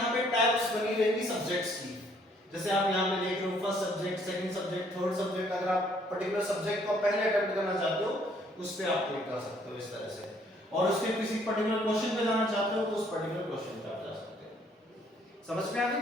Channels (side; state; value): both; normal; correlation 0.64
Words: पे टैब्स बनी रहेंगी सब्जेक्ट्स की, जैसे आप यहाँ पे देख रहे हो first subject, second subject, third subject. अगर आप पर्टिकुलर सब्जेक्ट को पहले अटेम्प्ट करना चाहते हो उस पे आप क्लिक कर सकते हो इस तरह से, और उसके किसी पर्टिकुलर क्वेश्चन पे जाना चाहते हो तो उस पर्टिकुलर क्वेश्चन पे आप जा सकते हो। समझ में आ गई